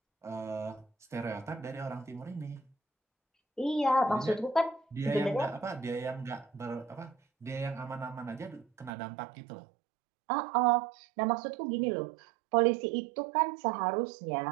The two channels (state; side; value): drops out; left; at 8.9 s